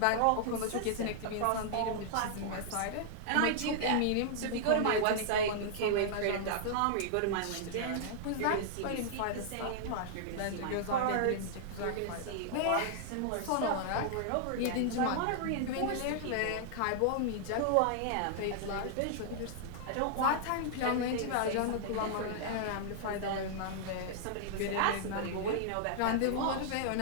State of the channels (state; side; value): different; both; correlation -0.01